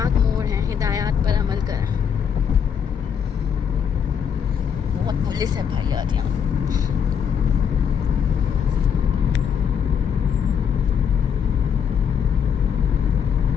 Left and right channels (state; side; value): quieter; right; 7.6 dB